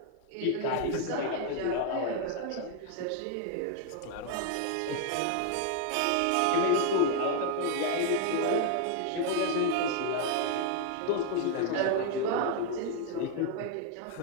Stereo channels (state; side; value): different; both; correlation 0.00